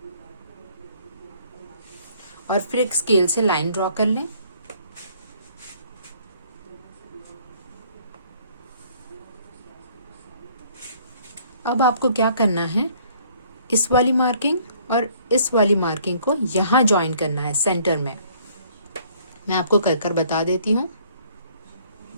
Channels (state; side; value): inverted; both; correlation -0.60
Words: और फिर एक स्केल से लाइन ड्रॉ कर लें। अब आपको क्या करना है, इस वाली मार्किंग और इस वाली मार्किंग को यहाँ ज्वाइन करना है सेंटर में। मैं आपको कर कर बता देती हूँ।